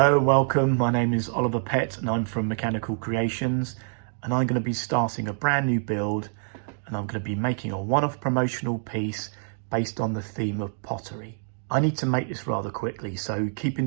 welcome. My name is Oliver Pett and I'm from Mechanical Creations, and I'm going to be starting a brand new build, and I'm going to be making a one-off promotional piece based on the theme of pottery. I need to make this rather quickly, so keeping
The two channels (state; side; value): silent; left; digital silence